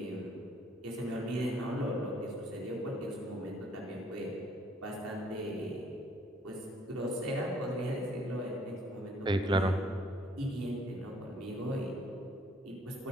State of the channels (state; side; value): normal; both; correlation 0.62